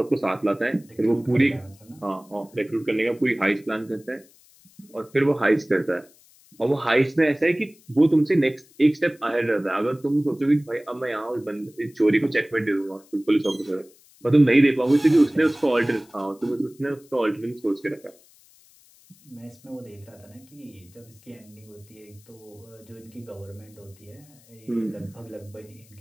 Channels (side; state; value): left; noise; hiss, 28 dB below the sound